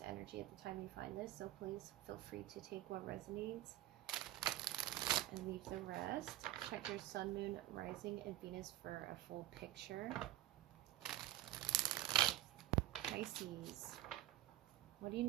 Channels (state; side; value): quieter; left; 15.0 dB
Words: energy at the time you find this. So please feel free to take what resonates and leave the rest. Check your sun, moon, rising, and Venus for a full picture. Pisces, what do you